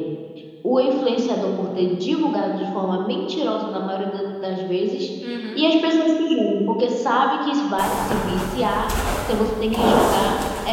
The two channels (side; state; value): both; identical; correlation 1.00